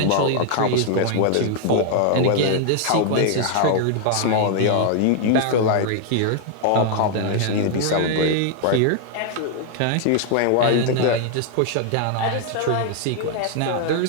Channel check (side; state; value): both; different; correlation 0.00